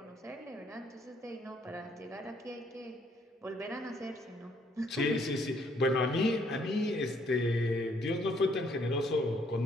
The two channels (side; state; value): both; normal; correlation 0.67